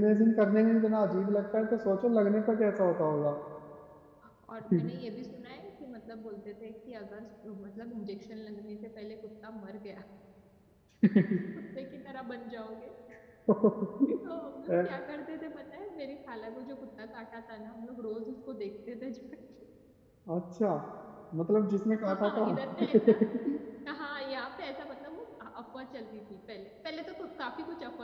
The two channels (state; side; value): identical; both; correlation 1.00